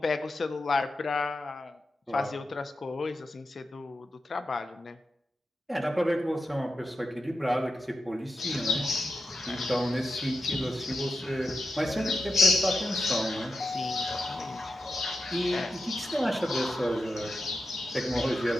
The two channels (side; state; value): both; normal; correlation 0.88